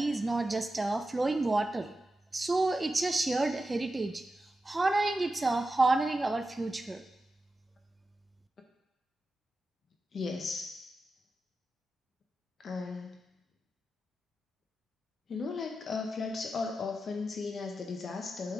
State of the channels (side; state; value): both; normal; correlation 0.91